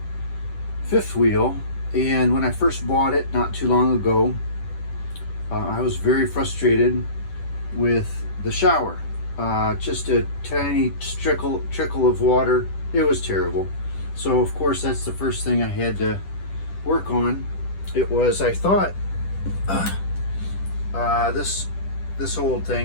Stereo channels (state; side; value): late; right; 10 ms